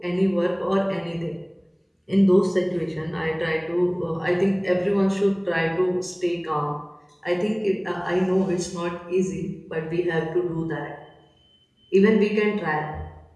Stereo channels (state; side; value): identical; both; correlation 1.00